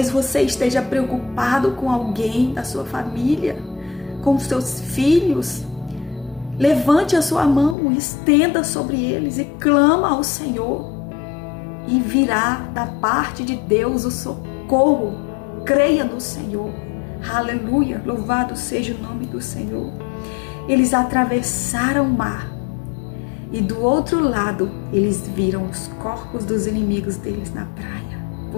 você esteja preocupado com alguém da sua família, com os seus filhos. Levante a sua mão, estenda sobre eles e clama ao Senhor. E virá da parte de Deus o socorro. Creia no Senhor. Aleluia. Louvado seja o nome do Senhor. Eles atravessaram o mar. E do outro lado, eles viram os corpos dos inimigos deles na praia.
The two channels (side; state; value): right; drops out; at 7.8 s